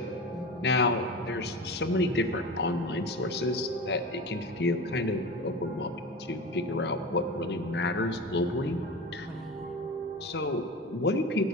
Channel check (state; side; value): normal; both; correlation 0.29